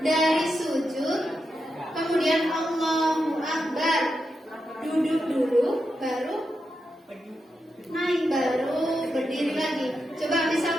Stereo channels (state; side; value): normal; both; correlation 0.87